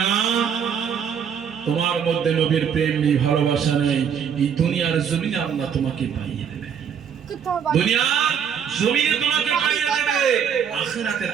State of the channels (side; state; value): left; quieter; 7.8 dB